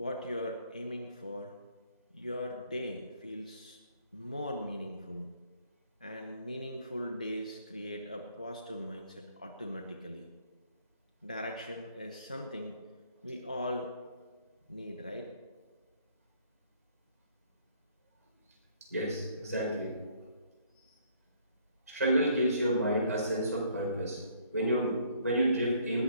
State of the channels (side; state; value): both; inverted; correlation -0.62